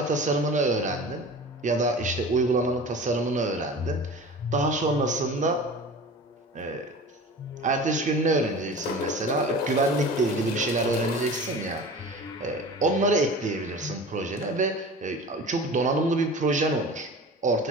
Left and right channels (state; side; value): normal; both; correlation 0.37